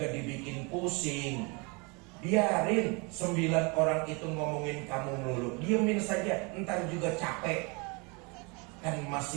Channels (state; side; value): quieter; left; 30.2 dB